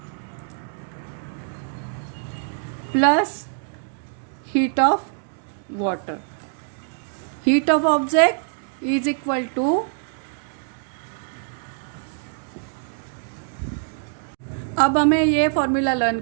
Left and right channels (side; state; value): left; silent; digital silence